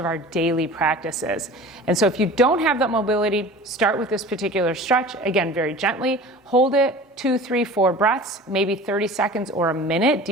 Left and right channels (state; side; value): normal; both; correlation 0.40